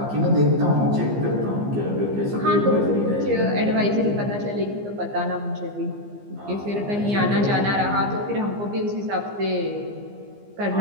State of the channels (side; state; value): left; late; 15 ms